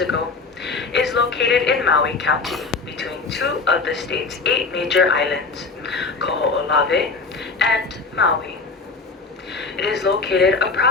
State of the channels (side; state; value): right; quieter; 4.3 dB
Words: ago, is located in Maui County between two of the state's 8 major islands, Koho'olawe and Maui. It is located